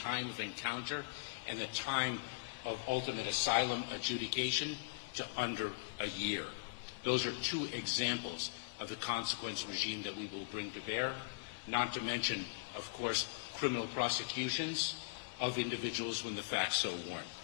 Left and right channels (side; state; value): right; quieter; 32.3 dB